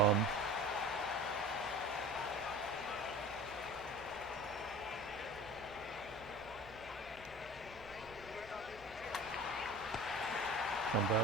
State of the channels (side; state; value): both; normal; correlation 0.39